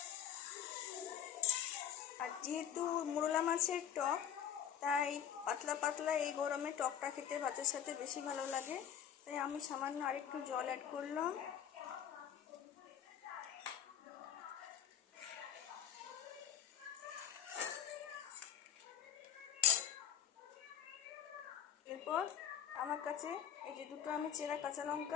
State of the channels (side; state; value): right; quieter; 9.4 dB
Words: আর যেহেতু মোরলা মাছের টক, তাই পাতলা পাতলা এই গরমে টকটা খেতে ভাতের সাথে বেশি ভালো লাগে, তাই আমি সামান্য আরেকটু জল অ্যাড করলাম। এরপর আমার কাছে এই যে দুটো আমি চেরা কাঁচা